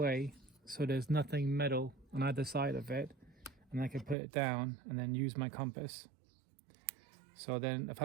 so there's nothing metal on either side of it, and I can put it down and then use my compass. So then if I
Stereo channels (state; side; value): drops out; left; at 4.2 s